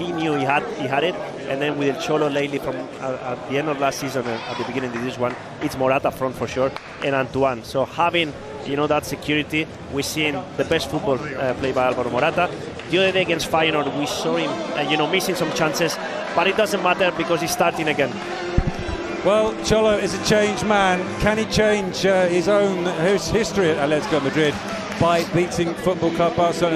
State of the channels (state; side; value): identical; both; correlation 1.00